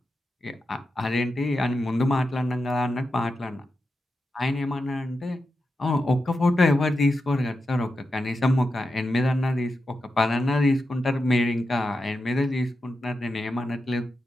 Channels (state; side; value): normal; both; correlation 0.89